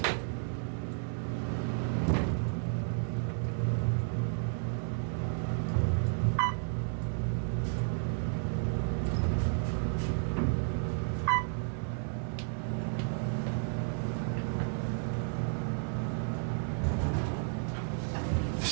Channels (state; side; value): silent; left; 56 dB below the other